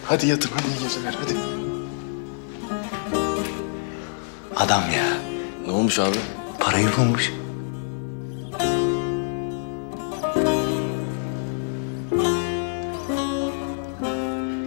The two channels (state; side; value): silent; right; digital silence